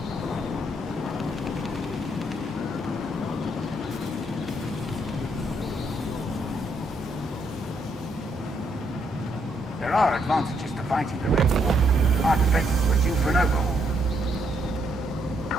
There are advantages to fighting the Red War. Our defenses were due for an overhaul.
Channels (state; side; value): normal; both; correlation 0.74